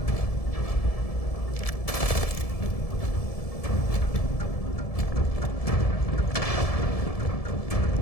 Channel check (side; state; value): right; late; 1.7 ms